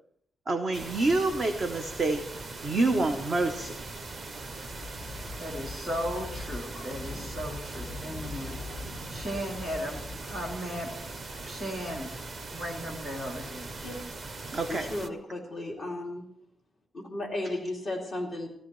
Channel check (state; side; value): normal; both; correlation 0.83